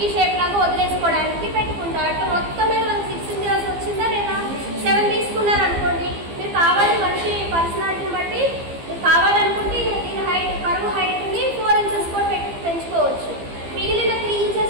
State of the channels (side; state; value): left; late; 15 ms